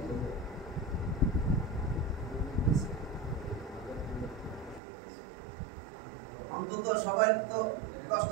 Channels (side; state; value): left; drops out; at 4.8 s